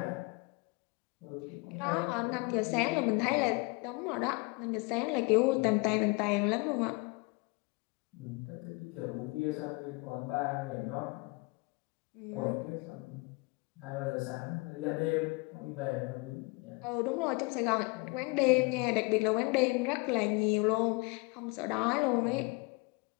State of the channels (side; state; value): right; quieter; 28.3 dB